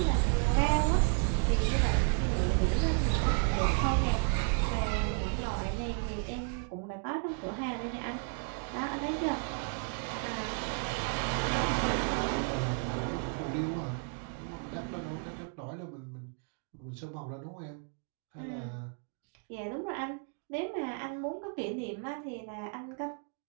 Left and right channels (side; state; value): left; quieter; 39.9 dB